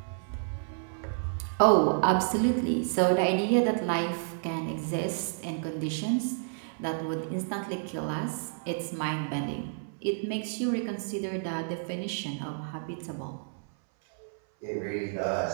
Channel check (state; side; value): silent; left; 58 dB below the other